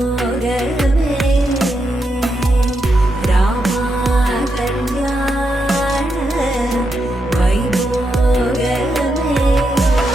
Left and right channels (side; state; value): both; normal; correlation 0.83